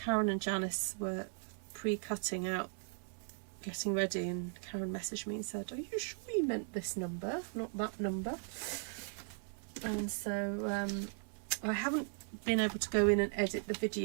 Karen and Janice were pre-cutting out, getting ready, and Karen messaged me and said, "Are you sure you meant this number, not that number?" And so I haven't been able to go in and edit the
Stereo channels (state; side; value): silent; left; 53 dB below the other